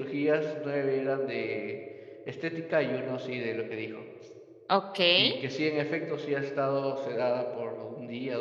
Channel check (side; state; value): both; identical; correlation 1.00